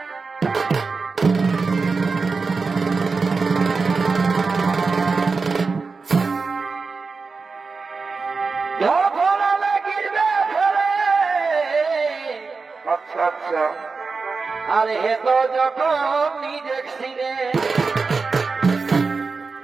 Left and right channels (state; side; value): quieter; left; 4.4 dB